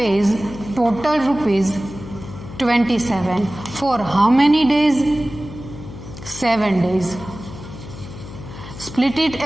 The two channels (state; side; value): noise; left; hum, 13 dB below the sound